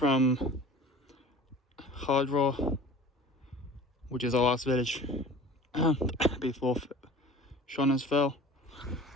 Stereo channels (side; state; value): both; normal; correlation 0.42